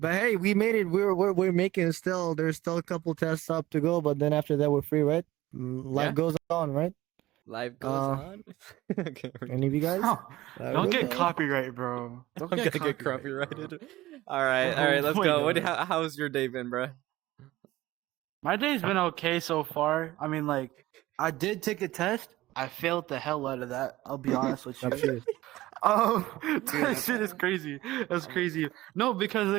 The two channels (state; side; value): quieter; left; 17.0 dB